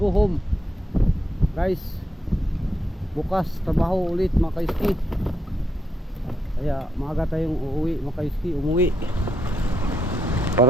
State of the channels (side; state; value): both; normal; correlation 0.80